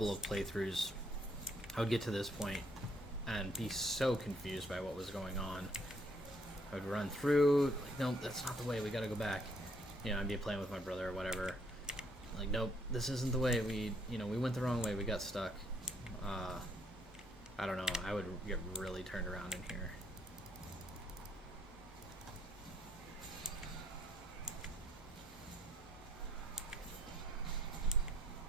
of playthroughs, I would get to this point and be so confused by what was going on. I would run through, like, no, that's not the way, we gotta go back. You know, I'd be playing with my brother or whatever. Like, nope, this isn't the way, we went the wrong way, we got stuck. I don't know, I would get really turned around in here.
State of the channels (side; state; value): both; normal; correlation 0.68